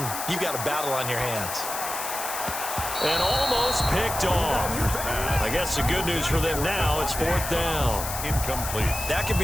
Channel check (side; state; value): left; noise; hiss, 6 dB below the sound